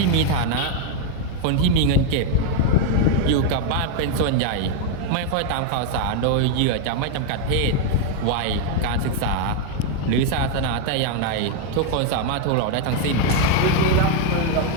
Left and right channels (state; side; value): different; both; correlation 0.01